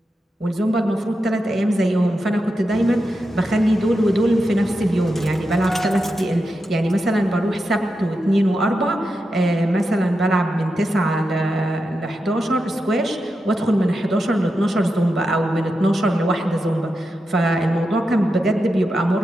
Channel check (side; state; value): both; normal; correlation 0.88